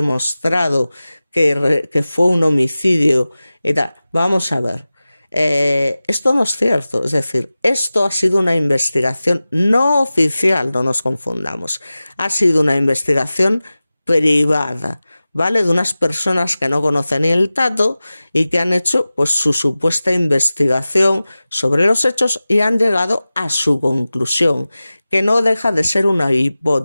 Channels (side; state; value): both; inverted; correlation -0.96